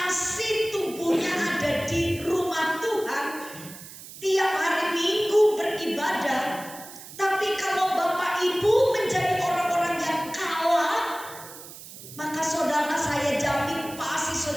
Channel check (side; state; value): right; noise; hiss, 15 dB below the sound